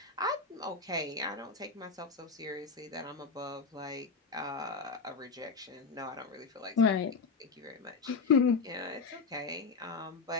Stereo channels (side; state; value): right; quieter; 4.8 dB